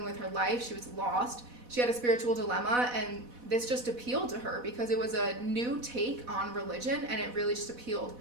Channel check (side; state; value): left; late; 4.1 ms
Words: with her life. She was lost. She had a spiritual dilemma, and this just appealed to her because it was a new take on religion, and it really just appealed